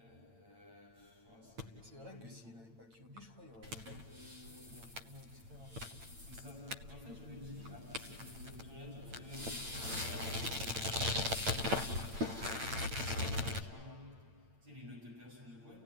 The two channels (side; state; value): left; late; 8.8 ms